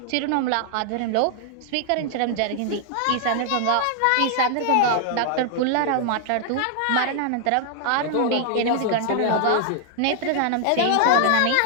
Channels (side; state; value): both; different; correlation 0.00